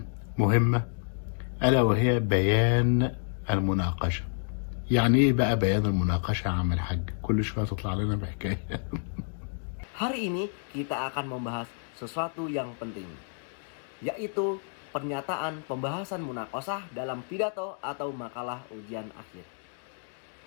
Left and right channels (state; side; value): silent; right; 57 dB below the other